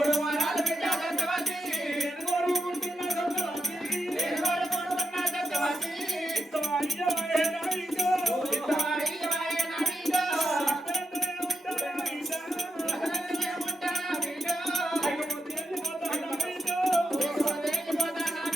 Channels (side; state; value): both; normal; correlation 0.85